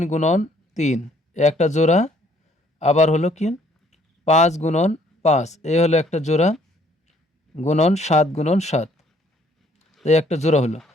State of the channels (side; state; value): both; normal; correlation 0.62